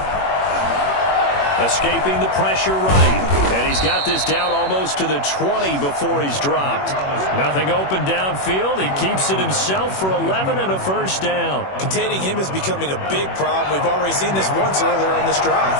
Escaping the pressure right. And he's got this down almost to the 20 before he's dropped. Nothing open downfield. He keeps it himself for 11 and a first down. Containing him is becoming a big problem. We've already seen this once earlier in this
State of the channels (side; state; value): right; late; 21 ms